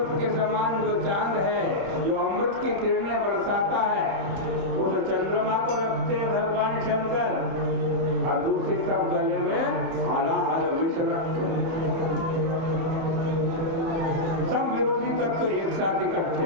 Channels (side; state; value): left; late; 30 ms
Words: के समान जो चांद है, जो अमृत की किरणें बरसाता है, उस चंद्रमा को रखते हैं भगवान शंकर, और दूसरी तरफ गले में हलाहल विष रखते हैं। सब विरोधी तत्व तो एक साथ इकट्ठे